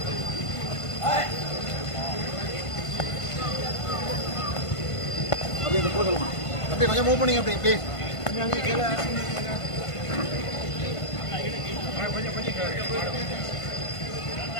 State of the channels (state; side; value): late; right; 1.5 ms